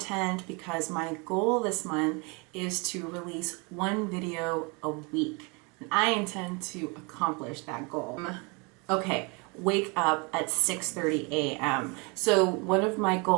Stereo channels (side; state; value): left; quieter; 30.5 dB